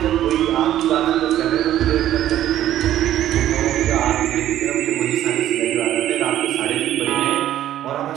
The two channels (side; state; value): left; quieter; 12.4 dB